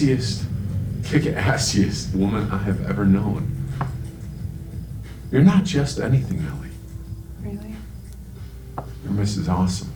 kick-assiest woman I have ever known. You're not just anything, Ellie. Really? You're Mrs. Awesome.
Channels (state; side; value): identical; both; correlation 1.00